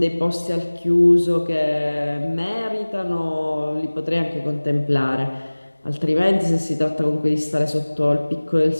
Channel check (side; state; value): both; inverted; correlation -1.00